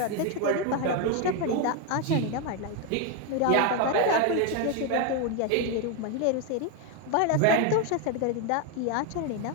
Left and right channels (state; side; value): different; both; correlation 0.01